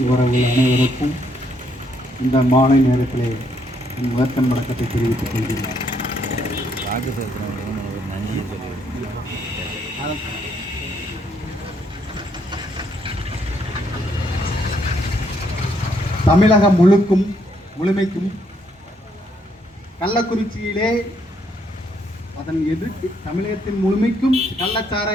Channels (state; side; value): normal; both; correlation 0.72